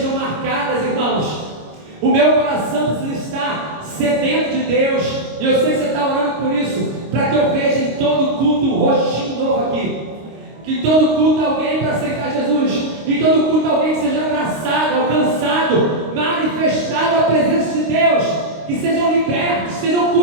marcadas O meu coração precisa estar sedento de Deus. E eu sei que você está orando por isso, para que eu veja em todo culto um rostinho novo aqui. Que em todo culto alguém para aceitar Jesus. Em todo culto alguém que seja abraçado, alcançado, manifestado a presença de Deus. Que sejam libertos, sejam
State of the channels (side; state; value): left; late; 26 ms